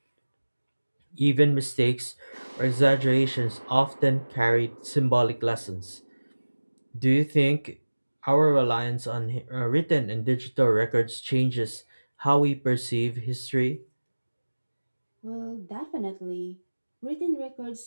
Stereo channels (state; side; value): inverted; both; correlation -1.00